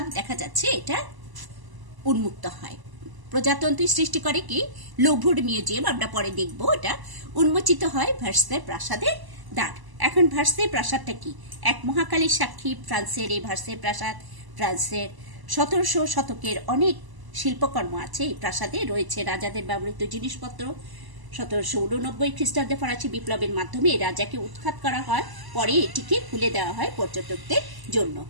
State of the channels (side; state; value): left; late; 1.0 ms